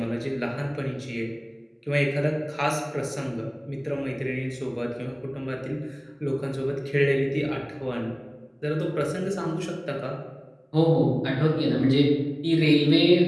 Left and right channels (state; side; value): identical; both; correlation 1.00